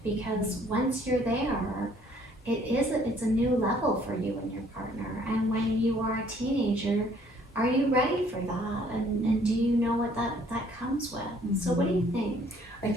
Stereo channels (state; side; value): normal; both; correlation 0.61